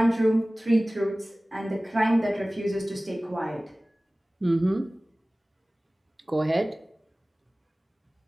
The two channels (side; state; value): both; normal; correlation 0.98